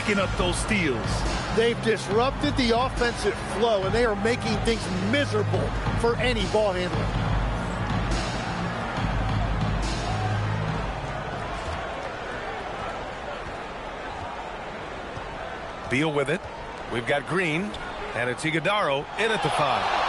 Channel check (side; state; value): both; identical; correlation 1.00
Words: up those steals. They've disrupted the offensive flow, and they are making things miserable for any ball handler. Beal with it. We've got Green, and it's Iguodaro in at the 5.